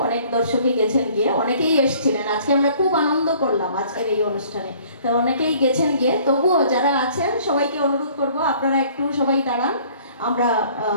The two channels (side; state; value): both; inverted; correlation -0.55